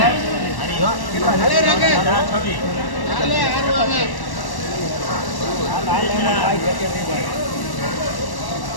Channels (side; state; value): right; late; 1.1 ms